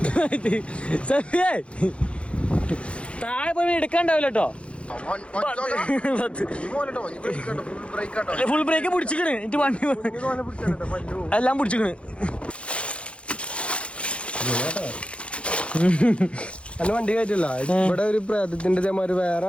താഴെ പോയി എടുക്കാണ്ടാവില്ല കേട്ടോ. ഫുൾ ബ്രേക്ക് പിടിച്ചിക്കണ് എനിക്ക് വണ്ടി എല്ലാം പിടിച്ചിക്കണ്. അല്ല വണ്ടി കയറ്റില്ല. ഇവിടെ ഒരു പ്രേതത്തിന്റെ ഇതേമാതിരി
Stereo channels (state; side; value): late; right; 0.060 ms